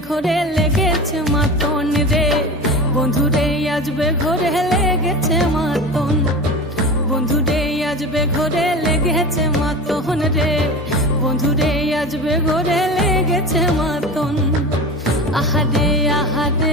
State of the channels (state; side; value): normal; both; correlation 0.31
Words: ঘরে লেগেছে মাতন রে বন্ধুরে আজবে ঘরে লেগেছে মাতন বন্ধুরে আজবে ঘরে লেগেছে মাতন রে বন্ধুরে আজবে ঘরে লেগেছে মাতন আহারে